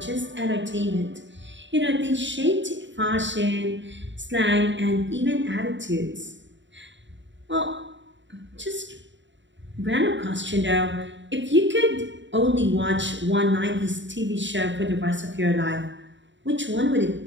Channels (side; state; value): left; late; 0.54 ms